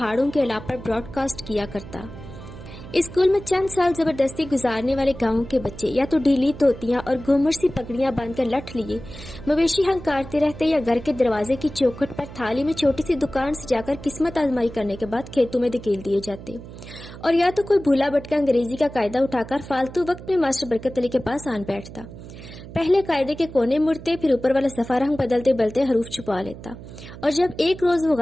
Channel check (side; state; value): right; noise; hum, 14 dB below the sound